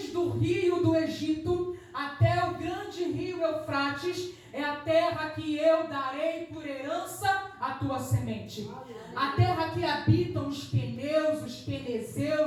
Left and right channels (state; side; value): identical; both; correlation 1.00